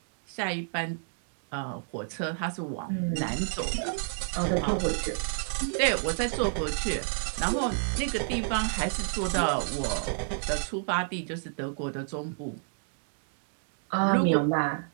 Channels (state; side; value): silent; left; digital silence